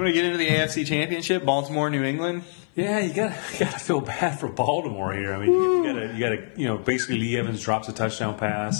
to get into the AFC Championship, Baltimore, New England? Yeah, you gotta feel bad for Baltimore here. I mean, you gotta basically Lee Evans drops a touchdown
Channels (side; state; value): right; silent; 57 dB below the other